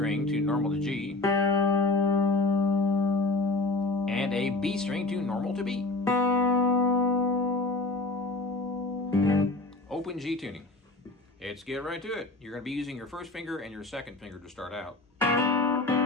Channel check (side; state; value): right; quieter; 3.1 dB